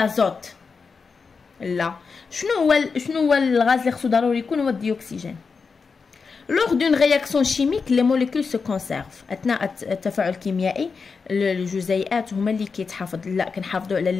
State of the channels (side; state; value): right; quieter; 5.1 dB